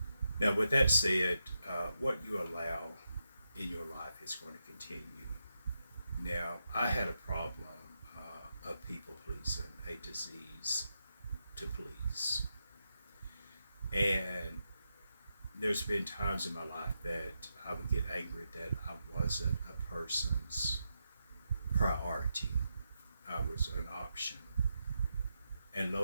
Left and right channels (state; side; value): inverted; both; correlation -0.86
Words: Now, with that said, what you allow in your life is going to continue. Now, I had a problem of people pleasing, a disease to please. And there's been times in my life that I would get angry that I wasn't a person's priority. I was an option. And